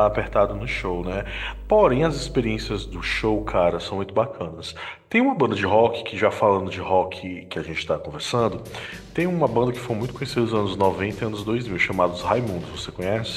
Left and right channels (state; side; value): identical; both; correlation 1.00